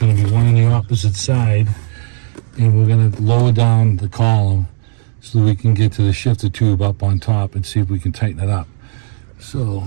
to be one on the opposite side, and we're going to lower down the column so we can get to the shifter tube up on top and see if we can tighten it up. So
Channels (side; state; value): left; silent; 70 dB below the other